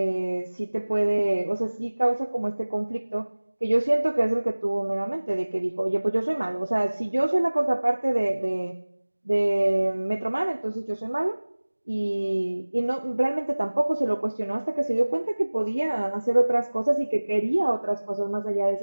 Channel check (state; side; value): inverted; both; correlation -1.00